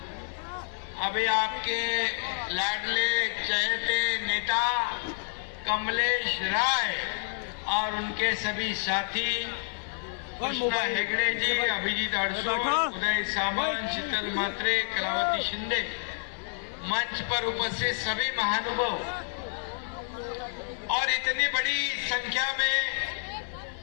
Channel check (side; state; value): right; silent; 56 dB below the other